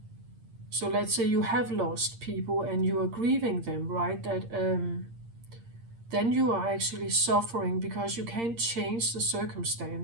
So let's say you have lost people and you are grieving them, right? That then you are actually suffering because you can't change the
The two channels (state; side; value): late; left; 8.7 ms